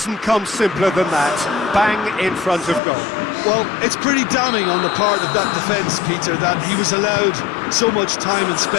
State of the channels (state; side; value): drops out; right; at 2.8 s